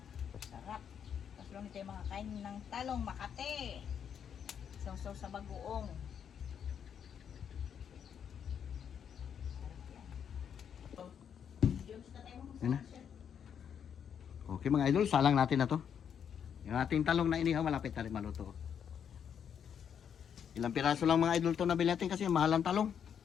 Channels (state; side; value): quieter; right; 8.1 dB